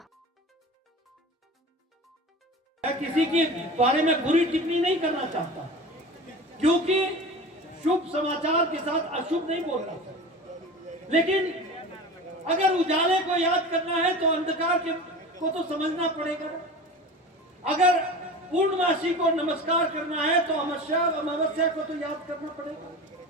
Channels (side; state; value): both; normal; correlation 0.34